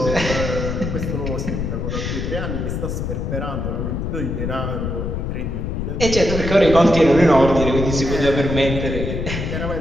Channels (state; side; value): noise; left; rumble, 3 dB below the sound